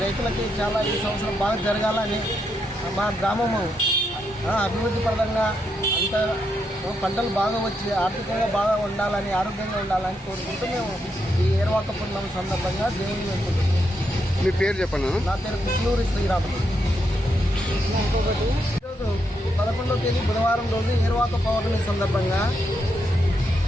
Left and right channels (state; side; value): normal; both; correlation 0.81